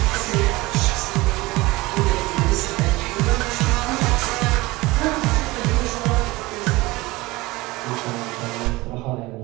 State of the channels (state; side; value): quieter; left; 21.1 dB